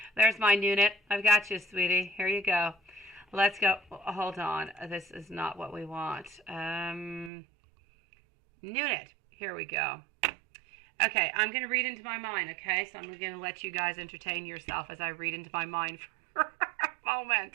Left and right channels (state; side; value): drops out; left; at 7.3 s